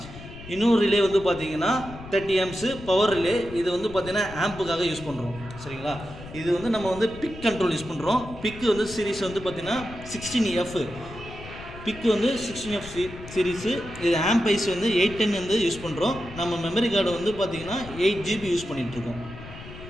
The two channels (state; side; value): noise; left; rumble, 14 dB below the sound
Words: இன்னொரு ரிலே வந்து பார்த்திங்கன்னா 30 ஆம்ப்ஸு பவர் ரிலே. இது வந்து பார்த்திங்கன்னா ஆம்புக்காக யூஸ் பண்ணுறோம். சரிங்களா? இது வந்து நம்ம வந்து பிக் கண்ட்ரோல் யூஸ் பண்ணுறோம். பிக்கு வந்து சீரிஸ் வந்து பார்த்திங்கன்னா 16F. பிக்கு வந்து 16F சீரீஸு. இது ஆம்ப் ஐஸ் வந்து 810 வந்து யூஸ் பண்ணுறோம். நம்ம மெமரி கார்டு வந்து பார்த்திங்கன்னா 8 GB யூஸ் பண்ணிகிட்ருக்கோம்.